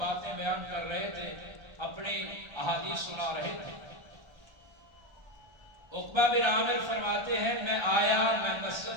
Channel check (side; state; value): left; late; 1.3 ms